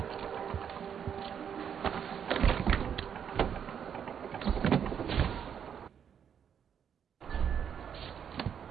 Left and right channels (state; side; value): quieter; left; 8.1 dB